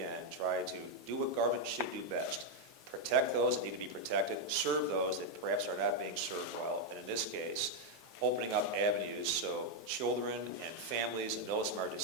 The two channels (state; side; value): normal; both; correlation 0.01